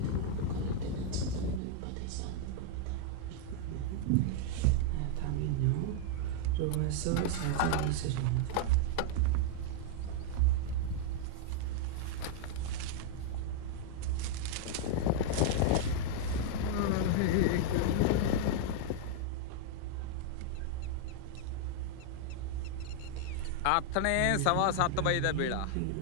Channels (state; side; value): different; both; correlation -0.01